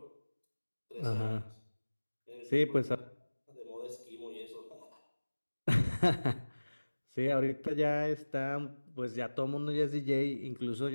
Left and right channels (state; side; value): inverted; both; correlation -1.00